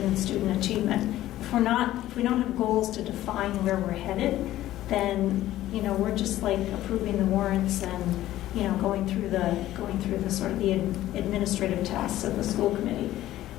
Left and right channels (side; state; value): right; quieter; 14.3 dB